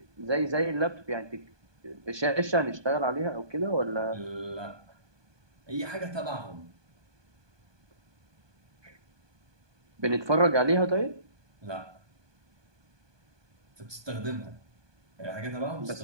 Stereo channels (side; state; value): left; late; 1.2 ms